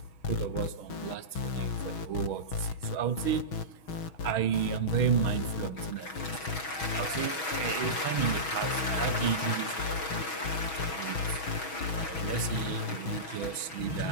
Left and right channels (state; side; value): late; right; 6.2 ms